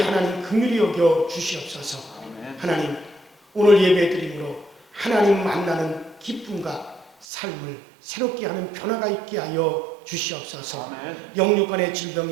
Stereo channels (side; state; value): left; drops out; at 7.2 s